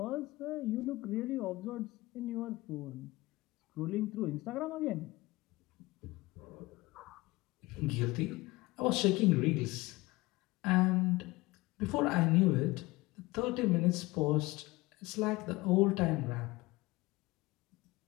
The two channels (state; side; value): quieter; right; 21.0 dB